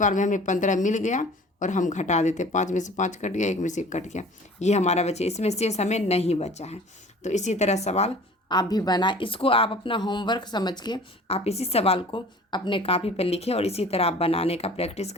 में हमें 15 मिल गया। और हम घटा देते, 5 में से 5 कट गया, 1 में से 1 कट गया। ये हमारा बचे, इसमें शेष हमें नहीं बचा है। तो इसी तरह सवाल आप भी बनाए। इसको आप अपना होमवर्क समझ के आप इसी सवाल को अपने कॉपी पर लिखें, और इसी तरह आप बनाने का प्रैक्टिस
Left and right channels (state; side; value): normal; both; correlation 0.46